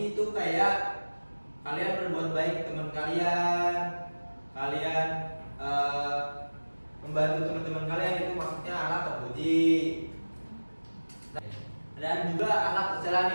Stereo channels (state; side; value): inverted; both; correlation -1.00